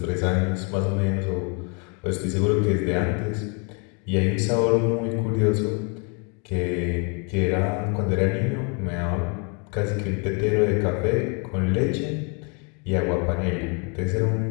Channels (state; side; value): quieter; right; 35.4 dB